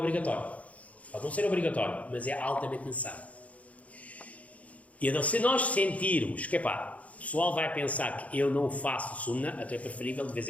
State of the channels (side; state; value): right; late; 0.068 ms